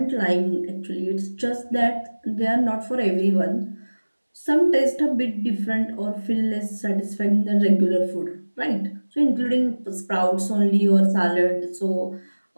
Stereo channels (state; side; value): inverted; both; correlation -1.00